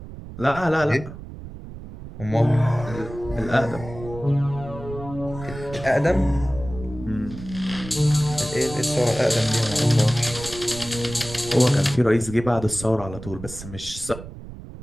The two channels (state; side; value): noise; right; rumble, 13 dB below the sound